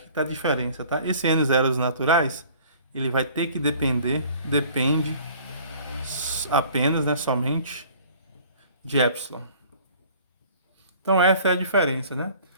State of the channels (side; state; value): both; inverted; correlation -0.51